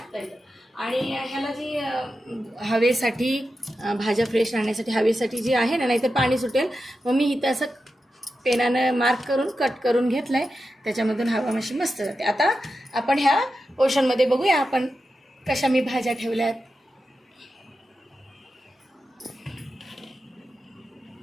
येतं. आणि ह्याला जी हवेसाठी भाज्या फ्रेश राहण्यासाठी हवेसाठी जी आहे ना, नाहीतर पाणी सुटेल, मग मी इथं असं पेनानं मार्क करून कट करून घेतलं आहे, त्याच्यामधून हवा मशी मस्त जाते. आता आपण ह्या पोर्शनमध्ये बघूया आपण कशा मी भाज्या ठेवल्यात.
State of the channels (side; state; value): both; normal; correlation 0.90